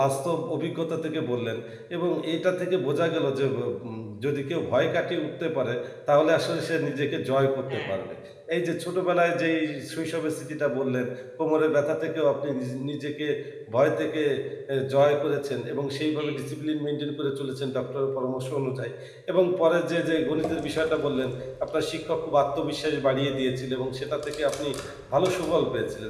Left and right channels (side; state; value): both; identical; correlation 1.00